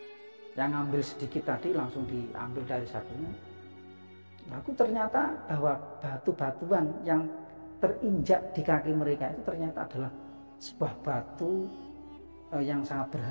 Yang ambil sedikit tadi langsung diambil dari satunya. Aku ternyata bahwa batu-batuan yang terinjak di kaki mereka itu ternyata adalah sebuah batu yang sangat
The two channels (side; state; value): both; inverted; correlation -1.00